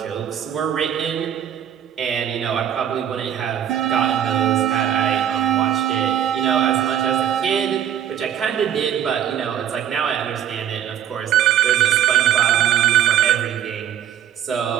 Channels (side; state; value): left; quieter; 10.2 dB